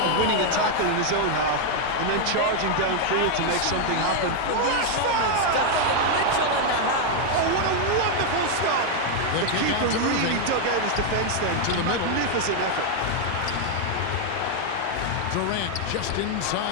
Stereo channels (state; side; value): different; both; correlation 0.00